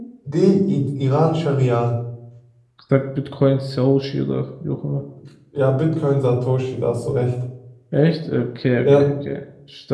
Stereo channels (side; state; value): both; identical; correlation 1.00